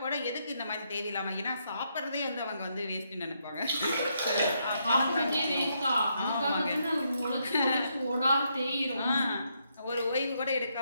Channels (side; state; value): both; inverted; correlation -0.77